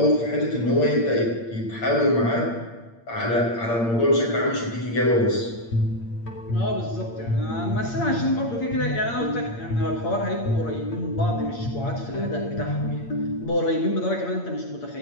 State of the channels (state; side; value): late; right; 8.7 ms